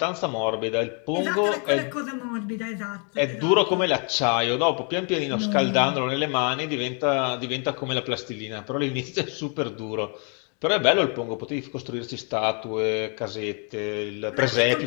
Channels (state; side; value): quieter; right; 38.5 dB